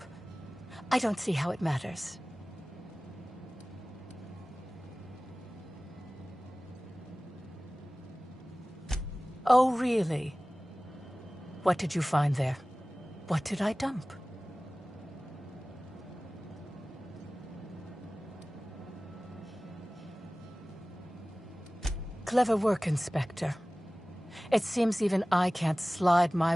I don't see how it matters. Oh, really? What did you find there? What did I dump? Clever work, Inspector. It seems even I can't slide my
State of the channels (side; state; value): both; normal; correlation 0.98